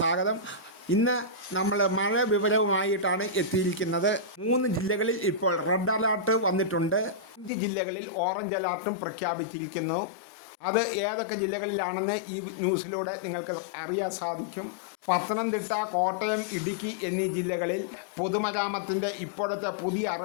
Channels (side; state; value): right; drops out; at 7.5 s